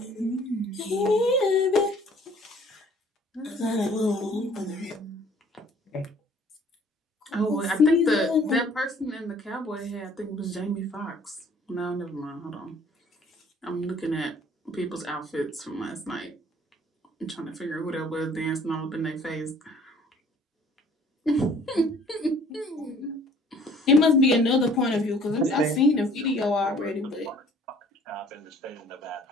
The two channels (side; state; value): both; normal; correlation 0.55